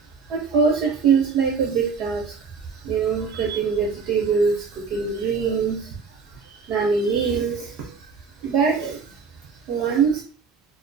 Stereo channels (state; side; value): quieter; left; 5.3 dB